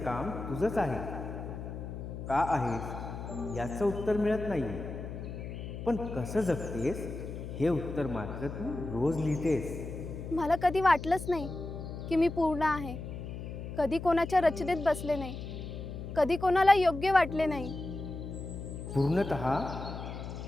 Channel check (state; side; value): noise; left; hum, 8 dB below the sound